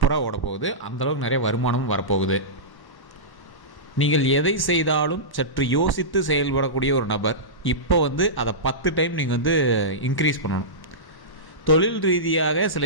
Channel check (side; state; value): right; late; 1.1 ms